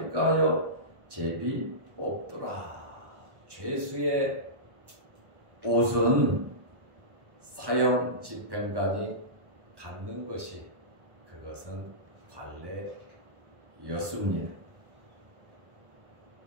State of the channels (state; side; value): late; left; 1.1 ms